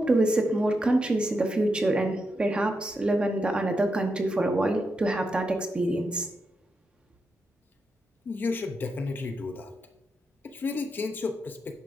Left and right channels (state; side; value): normal; both; correlation 0.85